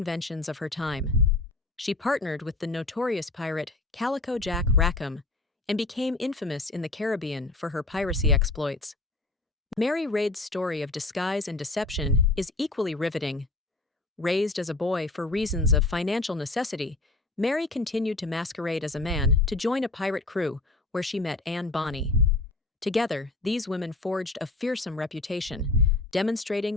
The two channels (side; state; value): right; quieter; 3.1 dB